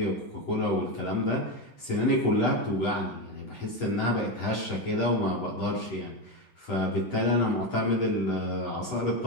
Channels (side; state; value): right; late; 8.1 ms